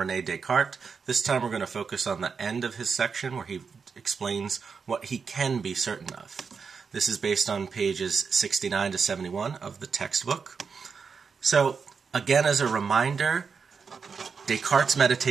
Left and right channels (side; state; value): left; quieter; 5.6 dB